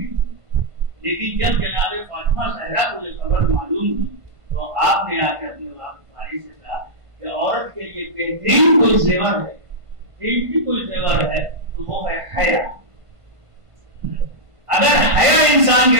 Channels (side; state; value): left; late; 1.5 ms